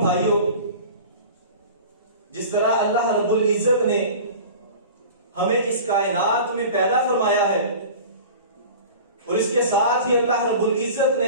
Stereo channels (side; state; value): both; inverted; correlation -0.38